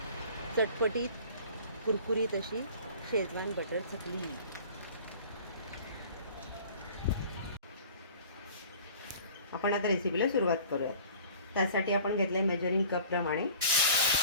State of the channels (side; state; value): both; inverted; correlation -0.46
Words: चटपटीत कुरकुरीत अशी शेजवान बटर चकली. आपण आता रेसिपीला सुरुवात करूया. त्यासाठी आपण घेतले मेजरिंग कप प्रमाणे